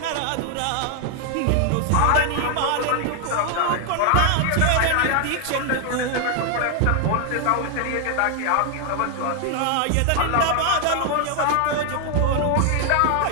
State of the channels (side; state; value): both; different; correlation 0.00